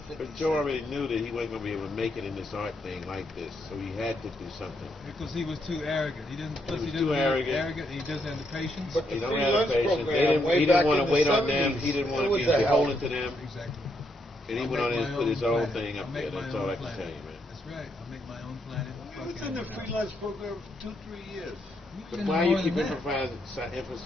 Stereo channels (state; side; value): normal; both; correlation 0.77